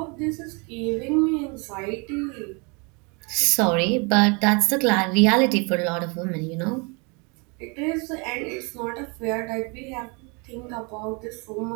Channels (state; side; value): quieter; left; 31.6 dB